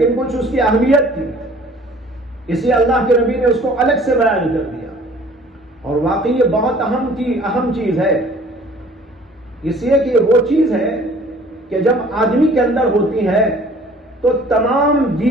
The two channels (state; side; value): normal; both; correlation 0.52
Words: کچھ اس کی اہمیت تھی، اس لیے اللہ کے نبی نے اس کو الگ سے بیان کر دیا، اور واقعی یہ بہت اہم چیز ہے، اس لیے کہ وہ چیز ہے کہ جب آدمی کے اندر ہوتی ہے تو تمام